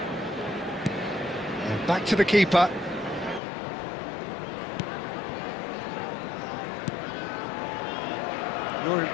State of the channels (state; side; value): drops out; right; at 3.4 s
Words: And back to the keeper. Your